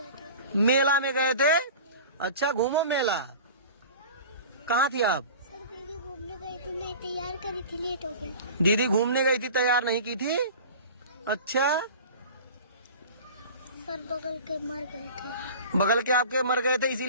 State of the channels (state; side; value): inverted; both; correlation -0.39